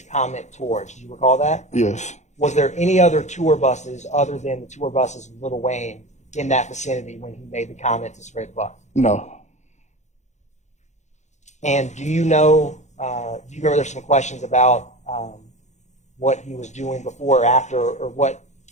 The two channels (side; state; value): right; late; 0.34 ms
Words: comment towards. Do you recall that? Yes. Was there any other tour buses other than the tour buses of Little Wayne in that vicinity when he made the comment to spread bus? No. And do you know, do you remember there's some questions about what he was doing before or after, or